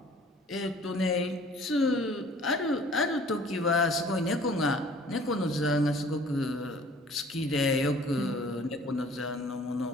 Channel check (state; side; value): normal; both; correlation 0.52